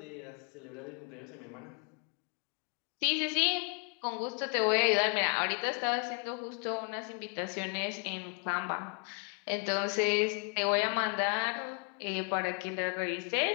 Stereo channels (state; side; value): quieter; right; 38.3 dB